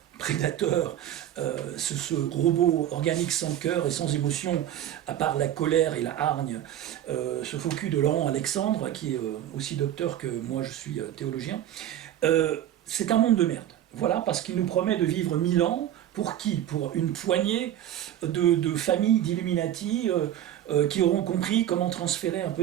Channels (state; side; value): quieter; left; 11.6 dB